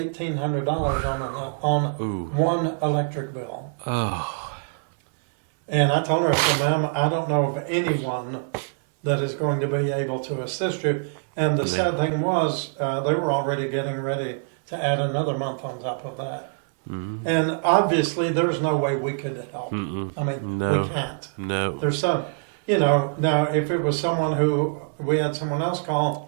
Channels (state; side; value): silent; left; digital silence